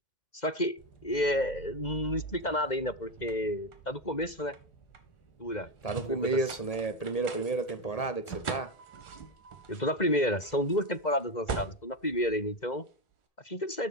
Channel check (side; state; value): right; late; 1.8 ms